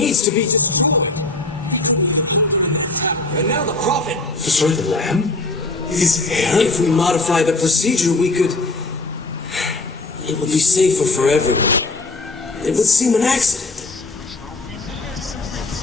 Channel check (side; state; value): right; quieter; 3.1 dB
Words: to be... in that tower, and now the Prophet... Destroy the lamb? His hair? If we modify the procedure, we could... It would be safer for everyone. It would seem an accident.